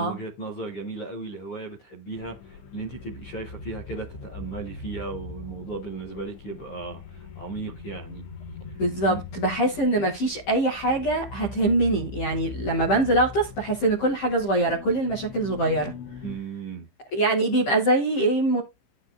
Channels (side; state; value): right; late; 15 ms